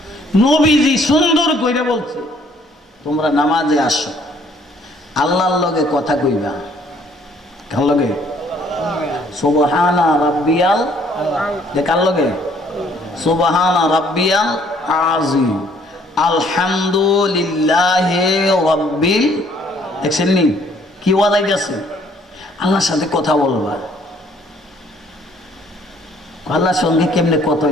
নবীজি সুন্দর কইরা বলছে তোমরা নামাজে আসো আল্লাহর লগে কথা কইবা কার লগে সুবহানা রাব্বিয়াল কার লগে সুবহানা রাব্বিয়াল আযীম আলহামদুলিল্লাহি রাব্বিল দেখছেন নি কি ওয়াদাই গেছে আল্লাহর সাথে কথা বলবা আল্লাহর সঙ্গে কেমনে কথা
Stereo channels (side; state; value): both; normal; correlation 0.62